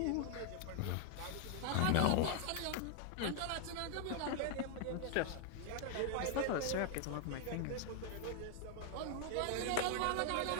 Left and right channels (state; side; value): different; both; correlation 0.00